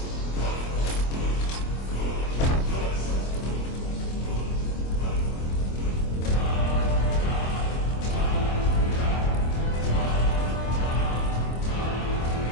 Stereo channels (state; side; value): late; right; 25 ms